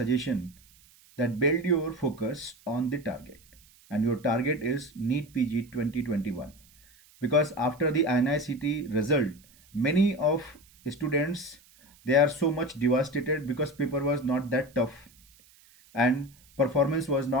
that build your focus on the target, and your target is NEET PG 2021, because after the INICT result many of students, they are so much devastated because paper was not that tough and performance was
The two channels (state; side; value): noise; right; hiss, 28 dB below the sound